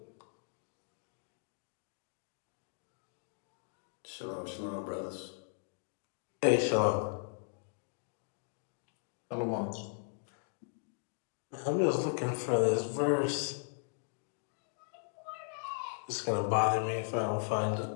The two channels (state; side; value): silent; right; digital silence